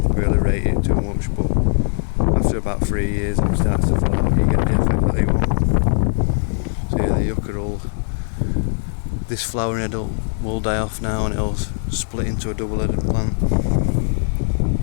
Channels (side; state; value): right; silent; 60 dB below the other